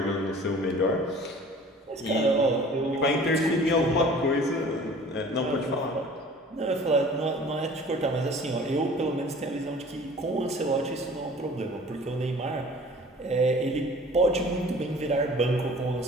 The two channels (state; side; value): normal; both; correlation 0.47